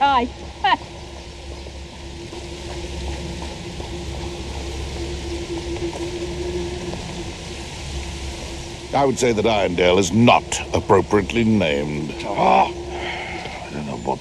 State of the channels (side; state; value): both; identical; correlation 1.00